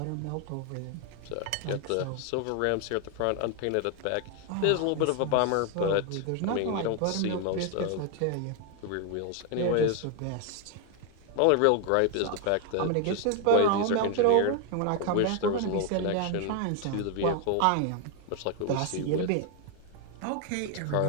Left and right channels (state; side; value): different; both; correlation 0.01